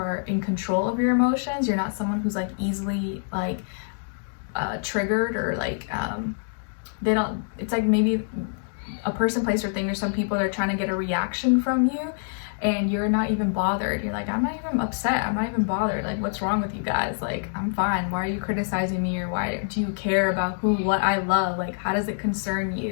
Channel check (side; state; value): right; silent; 61 dB below the other